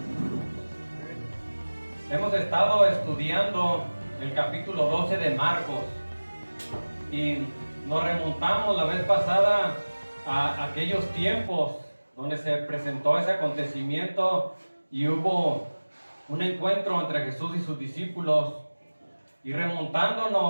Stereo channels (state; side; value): inverted; both; correlation -1.00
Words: Hemos estado estudiando el capítulo 12 de Marcos y nos remontamos la vez pasada a aquellos tiempos donde se presentó ese acontecimiento y hubo un encuentro entre Jesús y sus discípulos. Y